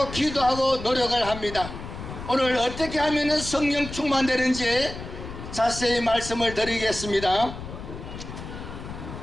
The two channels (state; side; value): noise; left; rumble, 10 dB below the sound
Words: 기도하고 노력을 합니다. 오늘 어떻게 하면 성령 충만되는지 자세히 말씀을 드리겠습니다.